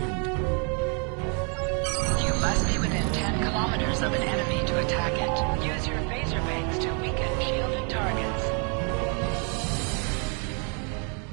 You must be within 10 kilometers of an enemy to attack it. Use your phaser bangs to weaken shielded targets.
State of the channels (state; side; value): quieter; left; 38.0 dB